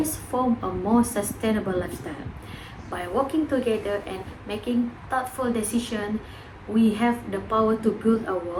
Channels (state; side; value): identical; both; correlation 1.00